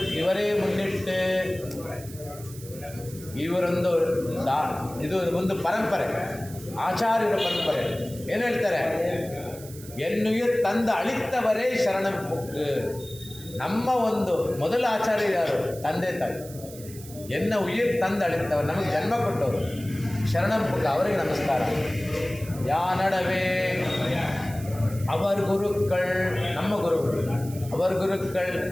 ಇವರೇ ಮುನ್ನಿಟ್ಟು ಇವರೊಂದು ಇದು ಒಂದು ಪರಂಪರೆ, ಆಚಾರ್ಯರ ಪರಂಪರೆ. ಏನು ಹೇಳ್ತಾರೆ? ಎನ್ನುಯಿರ್ ತಂದ ಅಳಿತ್ತವರೇ ಶರಣಂ ಬುಕ್. ನಮ್ಮ ಒಂದು ಮೊದಲ ಆಚಾರ್ಯ ಯಾರು? ತಂದೆ ತಾಯಿ. ಎನ್ನ ಉಯಿರ್ ತಂದ ಅಳಿತ್ತವರು, ನಮಗೆ ಜನ್ಮ ಕೊಟ್ಟವರು ಶರಣಂ ಬುಕ್, ಅವರಿಗೆ ನಮಸ್ಕಾರ. ಯಾ ನಡವೆ ಅವರ ಗುರುಗಳು, ನಮ್ಮ ಗುರುಗಳು, ಅವರ ಗುರುಗಳು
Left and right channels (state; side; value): noise; right; hiss, 17 dB below the sound